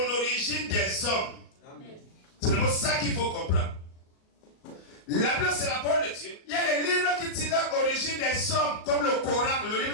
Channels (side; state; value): right; late; 38 ms